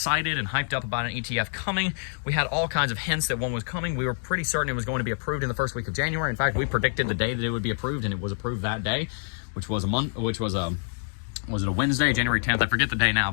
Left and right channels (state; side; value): silent; right; digital silence